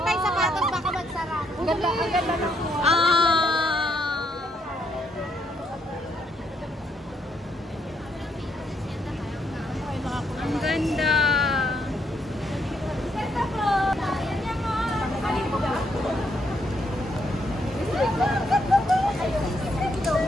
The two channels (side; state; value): both; normal; correlation 0.74